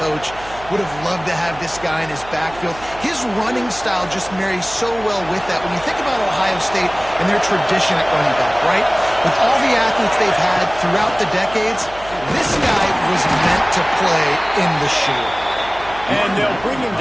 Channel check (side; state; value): right; noise; hum, 18 dB below the sound